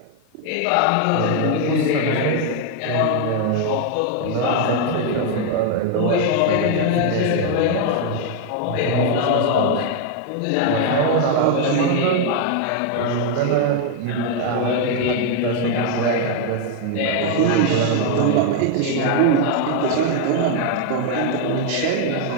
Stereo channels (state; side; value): different; both; correlation 0.00